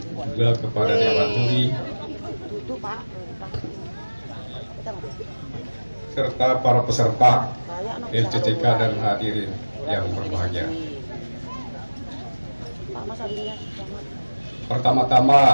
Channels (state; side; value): inverted; both; correlation -1.00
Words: juga kepada Dewan Juri, serta para peserta LCCK dan hadirin yang berbahagia.